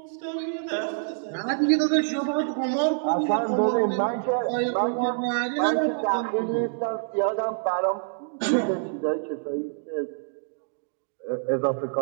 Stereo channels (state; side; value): silent; left; digital silence